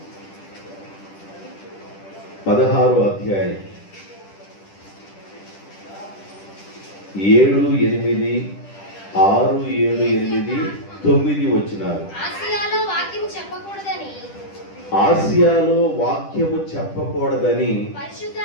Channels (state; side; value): late; right; 10 ms